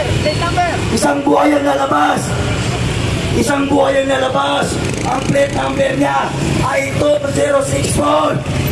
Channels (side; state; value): both; identical; correlation 1.00